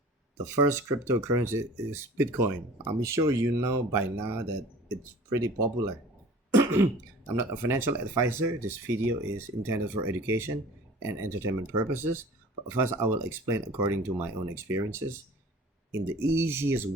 the first cryptocurrency is Bitcoin. I'm sure you know by now that it's pretty popular. I'm not a financial advisor. This video is intended for education and entertainment purposes. But first, I will explain according to my own experiences in the easiest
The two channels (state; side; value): normal; both; correlation 0.44